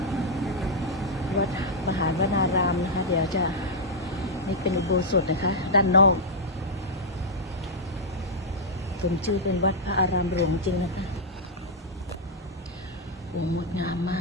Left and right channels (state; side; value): normal; both; correlation -0.04